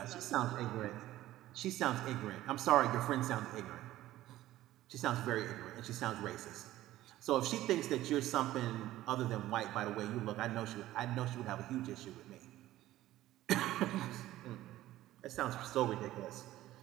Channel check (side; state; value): left; quieter; 15.0 dB